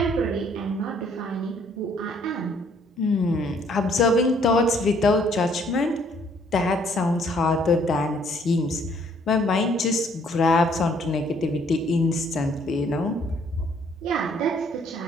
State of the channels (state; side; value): normal; both; correlation 0.63